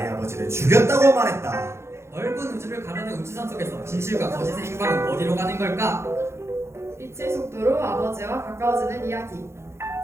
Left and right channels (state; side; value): late; left; 0.13 ms